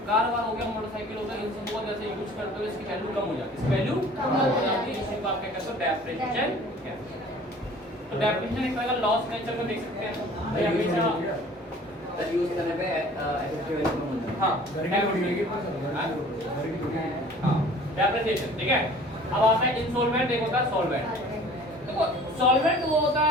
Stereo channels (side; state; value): both; normal; correlation 0.48